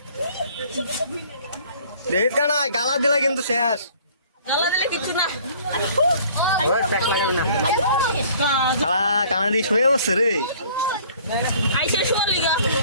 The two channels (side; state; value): both; inverted; correlation -0.54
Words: দেখ কানাই গালা দিলা কিন্তু শেষ। গালা দিলে কিচ্ছু না। কানা দিয়ে শুয়ে বসছে রে। আইসে শোয়ার লিগা।